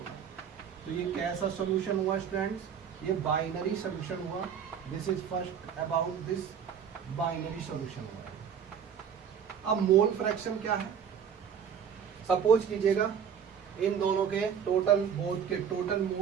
तो ये कैसा सोल्यूशन हुआ स्टूडेंट्स? ये बाइनरी सोल्यूशन हुआ। This is first about this binary solution हुआ। अब मोल फ्रैक्शन क्या है? सपोज कीजिएगा इन दोनों के टोटल, बोथ के टोटल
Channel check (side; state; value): left; quieter; 7.7 dB